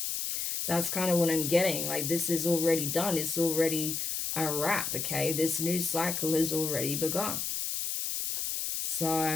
that's kind of what I'm getting. Like, this is already done. It's already a wrap, okay? This new cycle has already begun.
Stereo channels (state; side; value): noise; left; hiss, 2 dB below the sound